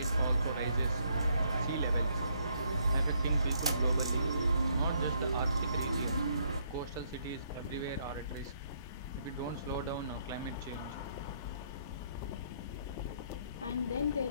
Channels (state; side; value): inverted; both; correlation -0.70